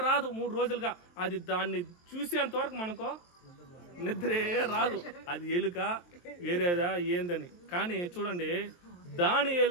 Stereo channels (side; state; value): right; late; 23 ms